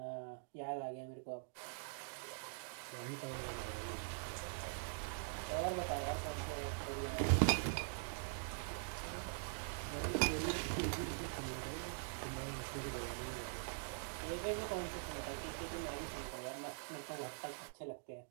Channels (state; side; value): silent; left; digital silence